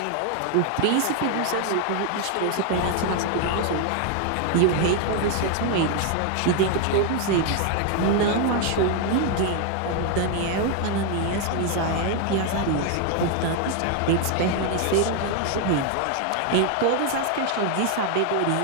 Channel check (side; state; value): both; different; correlation 0.00